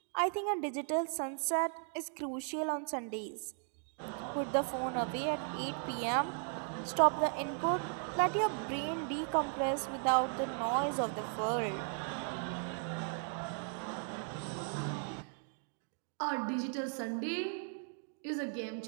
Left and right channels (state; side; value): silent; left; 53 dB below the other